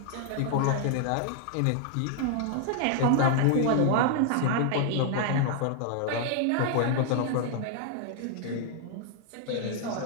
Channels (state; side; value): different; both; correlation 0.00